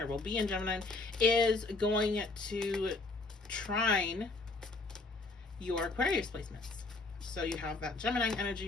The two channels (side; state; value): right; quieter; 3.5 dB